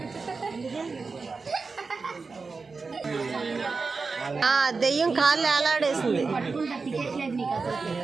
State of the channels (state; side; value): quieter; left; 4.4 dB